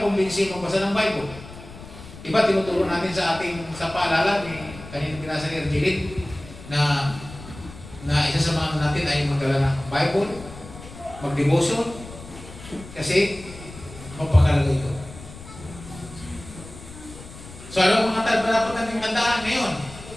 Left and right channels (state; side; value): noise; left; rumble, 16 dB below the sound